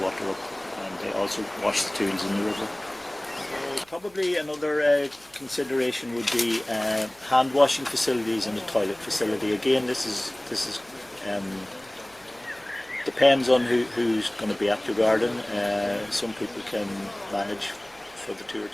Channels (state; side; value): noise; right; hum, 30 dB below the sound